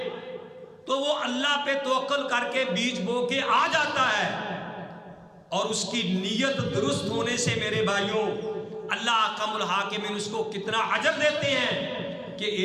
تو وہ اللہ پہ توکل کر کے بیج بو کے آ جاتا ہے، اور اس کی نیت درست ہونے سے میرے بھائیوں اللہ احکم الحاکمین اس کو کتنا اجر دیتے ہیں کہ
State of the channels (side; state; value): both; identical; correlation 1.00